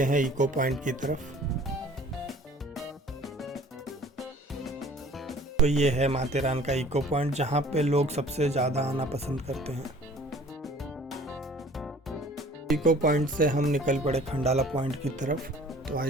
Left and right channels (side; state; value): both; normal; correlation 0.50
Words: हैं इको पॉइंट की तरफ। तो ये है माथेरान का इको पॉइंट, जहाँ पे लोग सबसे ज़्यादा आना पसंद करते हैं। इको पॉइंट से हम निकल पड़े खंडाला पॉइंट की तरफ। तो